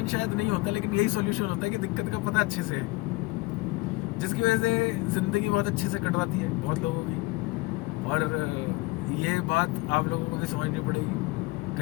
शायद नहीं होता, लेकिन यही सॉल्यूशन होता है कि दिक्कत का पता अच्छे से है, जिसकी वजह से ज़िंदगी बहुत अच्छे से कटवाती है बहुत लोगों की। और ये बात आप लोगों को भी समझनी पड़ेगी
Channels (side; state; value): right; quieter; 22.3 dB